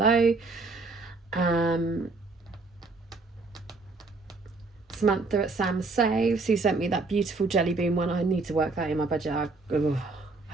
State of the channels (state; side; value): quieter; left; 3.7 dB